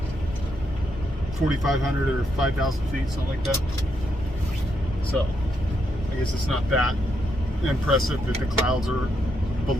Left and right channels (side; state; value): both; normal; correlation 0.79